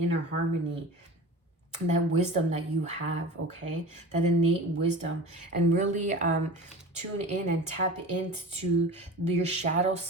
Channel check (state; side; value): normal; both; correlation 0.35